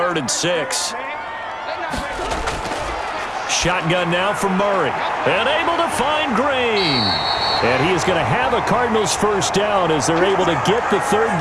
and 6. Shotgun now from Murray. And able to find Green. And he is going to have a Cardinals first down as they're able to get the 3rd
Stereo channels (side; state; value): both; identical; correlation 1.00